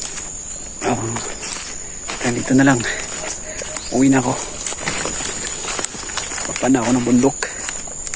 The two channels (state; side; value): identical; both; correlation 1.00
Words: Dito na lang. Uwi na ako. Papana ako ng bundok.